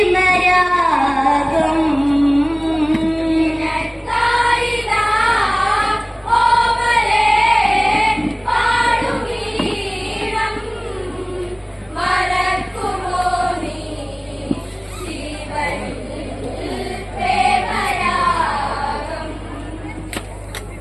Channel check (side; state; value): both; identical; correlation 1.00